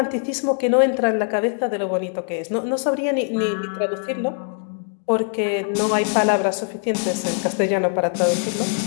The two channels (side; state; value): right; silent; 64 dB below the other